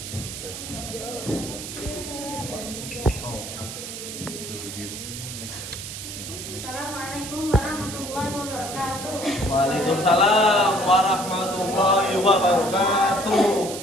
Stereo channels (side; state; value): right; noise; hiss, 9 dB below the sound